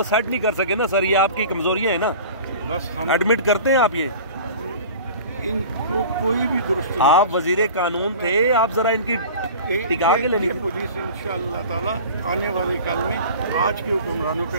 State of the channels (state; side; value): inverted; both; correlation -0.40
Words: सेट नहीं कर सके ना सर, ये आपकी कमजोरियाँ है ना। बस हम एडमिट करते हैं आप ये, इनको कोई भी दुरुस्त। आप वजीर कानून थे, आप जरा इनकी टिका के लेनी। पुलिस इंशाअल्लाह ताला आने वाले कल में आज के हुक्मरानों के